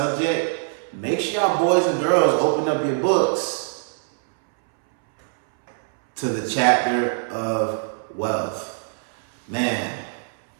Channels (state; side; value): silent; left; 64 dB below the other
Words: Make sure y'all boys and girls open up your books to the chapter of wealth. Man,